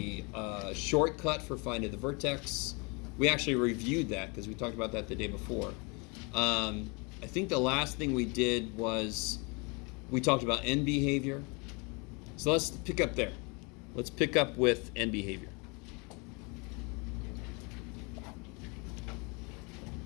shortcut for finding the vertex. We actually reviewed that because we talked about that the day before. I think the last thing we did was we talked about end behavior. So let's pick up there. Let's pick up with end behavior.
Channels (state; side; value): quieter; right; 30.7 dB